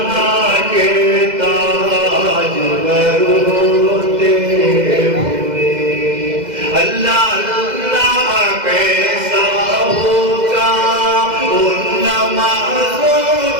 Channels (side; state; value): left; late; 2.0 ms